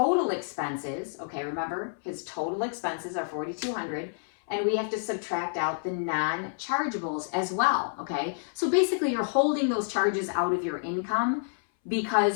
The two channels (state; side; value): silent; right; 59 dB below the other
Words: expenses, okay, remember his total expenses are $4,200, and we have to subtract out the non-chargeables as well, okay? So basically you're holding those charges out of your income